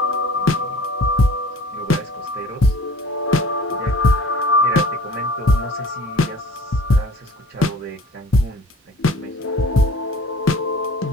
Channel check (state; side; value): normal; both; correlation 0.47